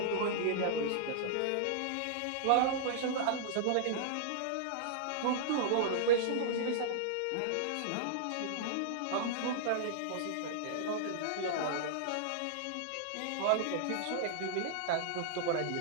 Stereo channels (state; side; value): different; both; correlation -0.01